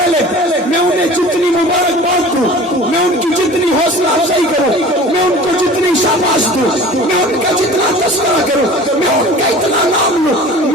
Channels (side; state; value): both; normal; correlation 0.42